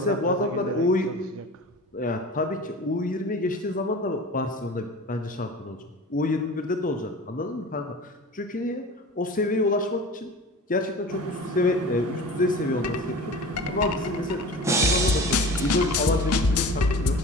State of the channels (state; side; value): normal; both; correlation 0.37